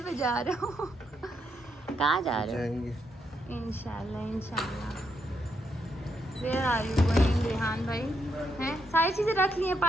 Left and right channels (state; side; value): normal; both; correlation 0.79